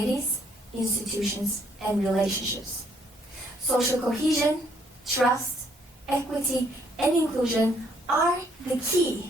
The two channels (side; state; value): both; normal; correlation 0.67